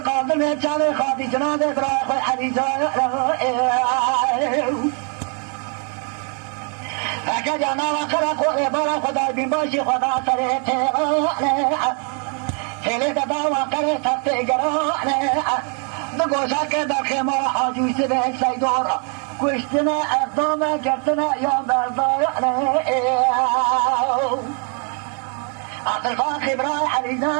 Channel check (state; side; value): quieter; left; 39.5 dB